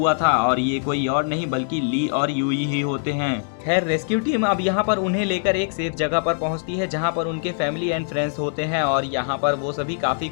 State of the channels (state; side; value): silent; right; digital silence